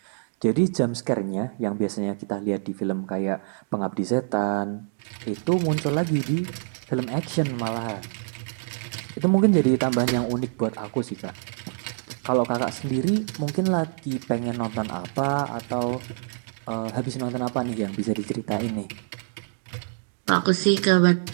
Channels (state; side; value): silent; left; digital silence